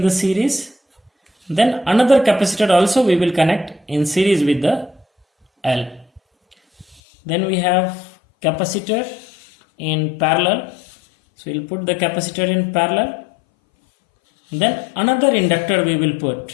the series, then another capacitor also we will connect in series with the L. Then we have capacitor in parallel, so we'll put the capacitor in parallel. Then another inductor we will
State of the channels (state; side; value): drops out; right; at 7.0 s